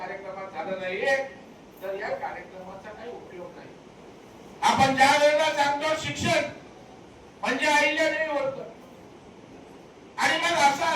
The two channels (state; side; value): identical; both; correlation 1.00